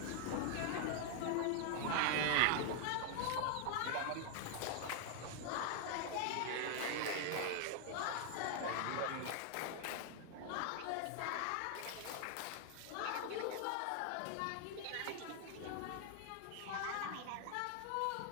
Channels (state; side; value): different; both; correlation 0.00